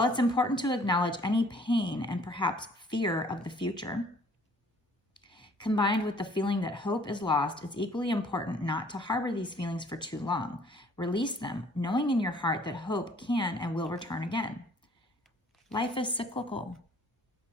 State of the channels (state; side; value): normal; both; correlation 0.57